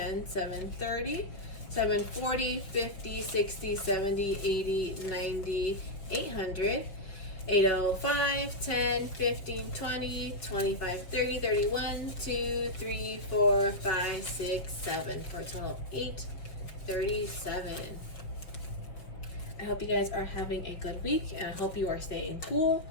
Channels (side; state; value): right; late; 5.4 ms